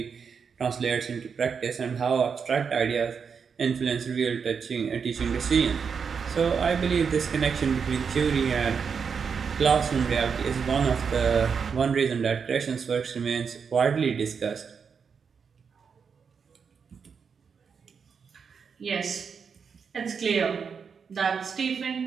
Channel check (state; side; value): quieter; left; 6.2 dB